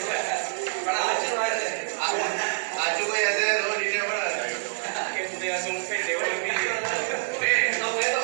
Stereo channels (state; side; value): silent; left; digital silence